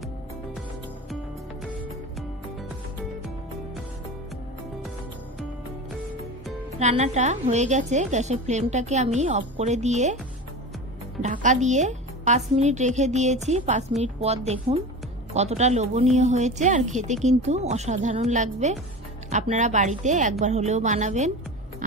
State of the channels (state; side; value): normal; both; correlation 0.29